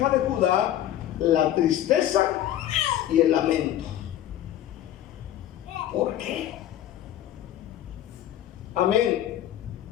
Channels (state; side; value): quieter; right; 12.1 dB